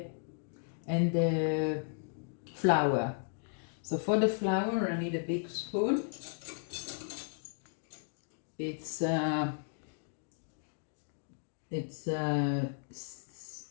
flour. So for the flour, I need a big spoon. It's and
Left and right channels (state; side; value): silent; right; digital silence